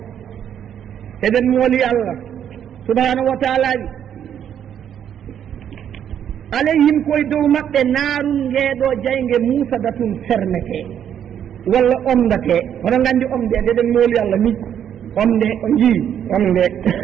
eɗen mooli allah subhanahu wa taala wi alayhim koye dow maɓɓe naarum ngeeɗo jayge musadatun fernete walla omdate hono gandi omde eɗen mooli allah ni omde o jii omde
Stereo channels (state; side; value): quieter; left; 9.3 dB